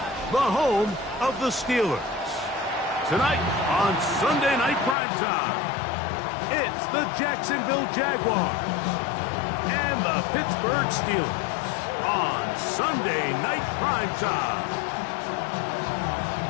the home of the Steelers. Tonight on Sunday Night Primetime, it's the Jacksonville Jaguars and the Pittsburgh Steelers on Sunday Night Primetime.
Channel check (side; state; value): right; drops out; at 5.0 s